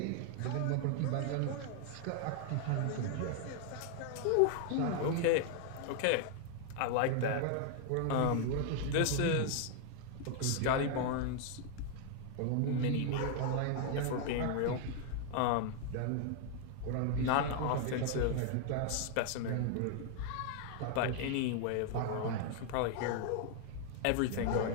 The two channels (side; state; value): both; different; correlation 0.00